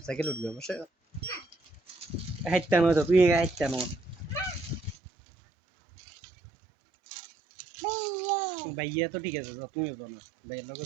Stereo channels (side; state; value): left; drops out; at 5.0 s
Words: সাইকেল উঠবে বাসা হাইটটা নয় তো তুই হাইটটা নয় ভাইয়া তো ঠিক আছে তুমিও তো না ভাইয়ের লোক